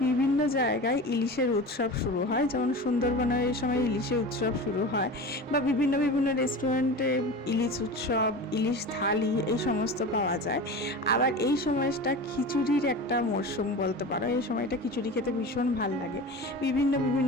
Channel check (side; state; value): both; normal; correlation 0.31